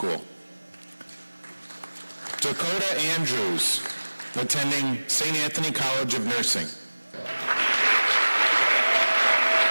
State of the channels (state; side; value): inverted; both; correlation -1.00